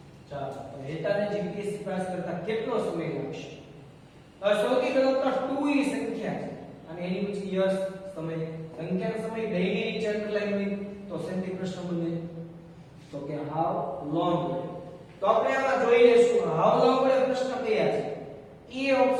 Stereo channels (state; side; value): identical; both; correlation 1.00